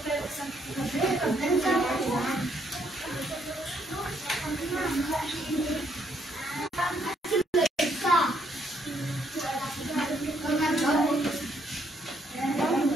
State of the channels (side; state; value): both; normal; correlation 0.71